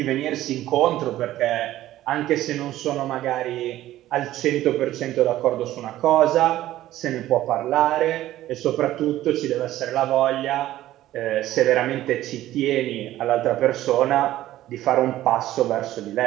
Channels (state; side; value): quieter; left; 14.4 dB